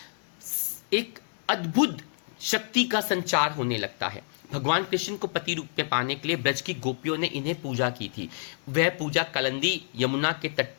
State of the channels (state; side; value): silent; right; digital silence